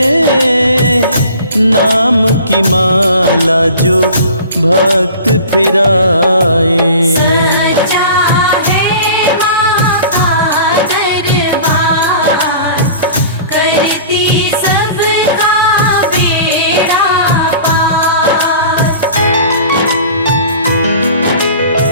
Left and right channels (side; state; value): both; inverted; correlation -0.43